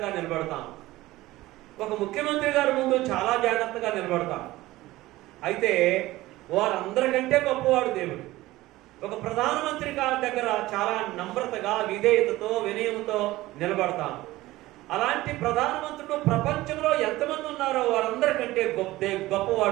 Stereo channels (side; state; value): left; quieter; 17.7 dB